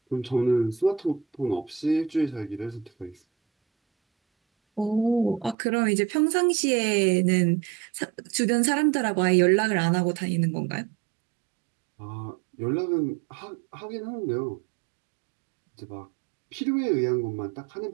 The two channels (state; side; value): drops out; left; at 5.6 s